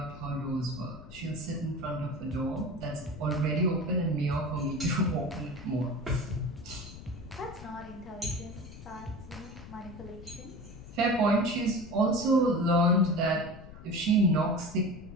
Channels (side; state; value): left; noise; rumble, 15 dB below the sound